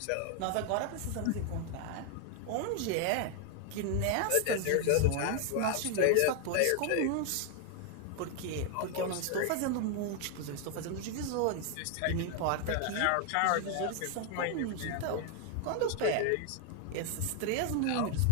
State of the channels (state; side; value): different; both; correlation 0.00